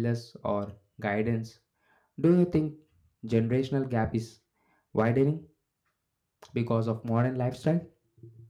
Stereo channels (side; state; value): both; identical; correlation 1.00